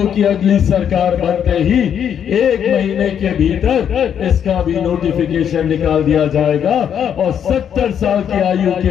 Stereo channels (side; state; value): right; quieter; 8.7 dB